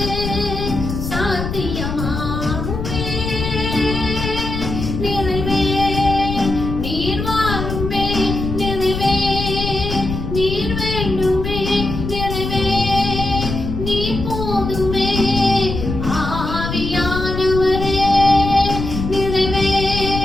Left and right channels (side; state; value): left; noise; rumble, 4 dB below the sound